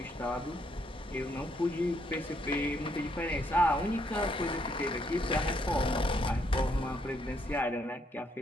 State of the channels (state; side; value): normal; both; correlation 0.73